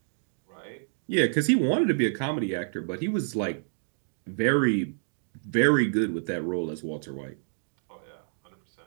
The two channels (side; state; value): left; silent; digital silence